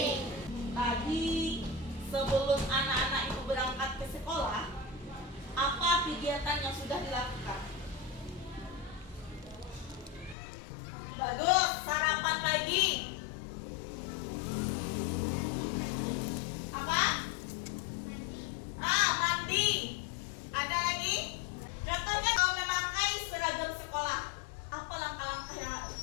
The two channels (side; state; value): right; drops out; at 10.4 s